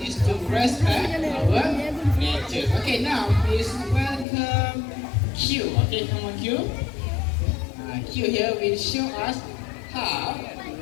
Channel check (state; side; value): drops out; right; at 4.2 s